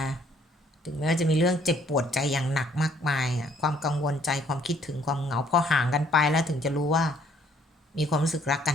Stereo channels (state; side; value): normal; both; correlation 0.63